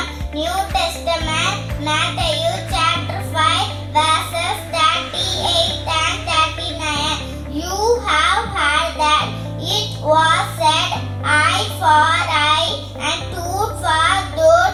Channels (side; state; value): both; identical; correlation 1.00